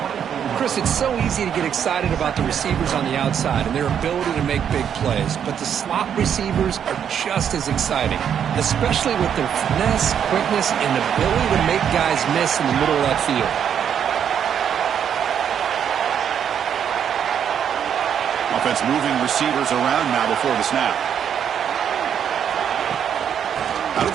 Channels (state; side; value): quieter; left; 8.5 dB